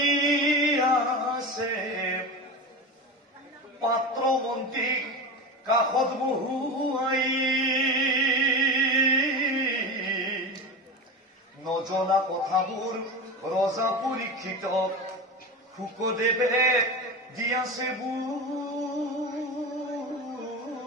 আছে পাত্ৰ মন্ত্ৰীক কাষত বহুৱাই নজনা কথাবোৰ ৰজা পৰীক্ষিতক শুকদেৱে দি আছে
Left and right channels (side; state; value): both; normal; correlation 0.25